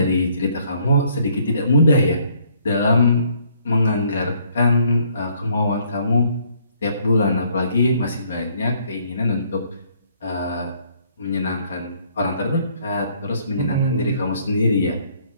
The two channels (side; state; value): both; inverted; correlation -0.65